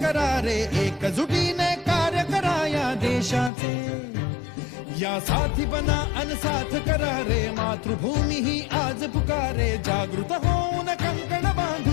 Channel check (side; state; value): right; drops out; at 3.5 s